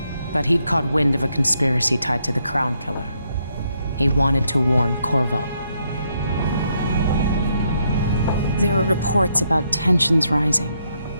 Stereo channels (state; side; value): inverted; both; correlation -0.76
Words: but he'd caught wind of a conspiracy tied to the Crown Killer. He wanted to warn Corvo. There were reports about tensions rising,